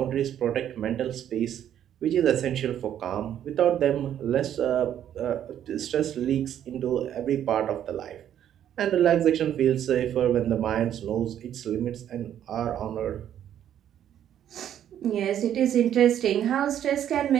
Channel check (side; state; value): left; quieter; 10.4 dB